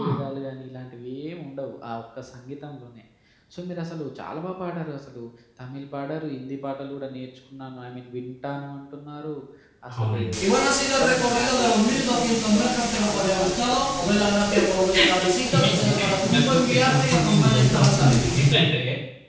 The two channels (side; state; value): both; identical; correlation 1.00